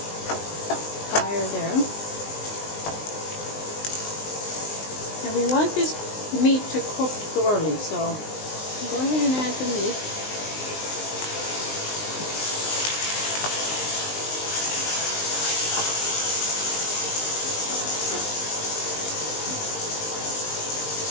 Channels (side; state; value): right; late; 19 ms